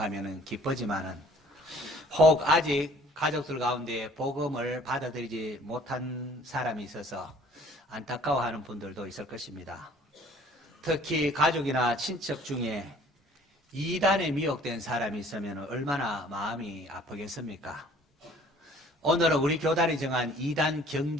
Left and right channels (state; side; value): normal; both; correlation 0.54